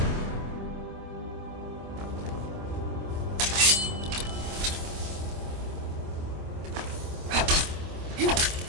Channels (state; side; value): late; left; 25 ms